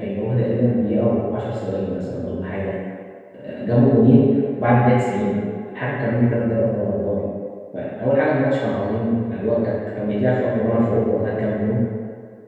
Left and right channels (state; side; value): identical; both; correlation 1.00